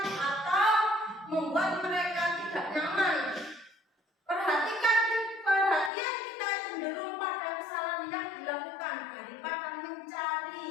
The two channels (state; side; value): drops out; right; at 5.9 s